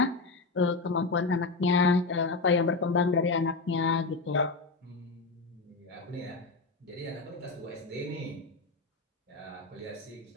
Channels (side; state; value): right; quieter; 3.8 dB